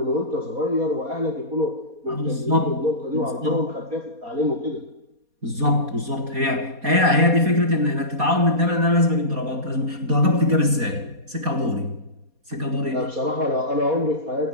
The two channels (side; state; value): left; late; 4.2 ms